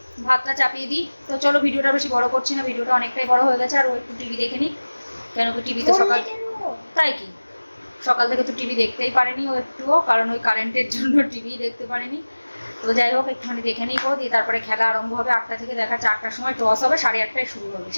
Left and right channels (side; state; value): both; inverted; correlation -1.00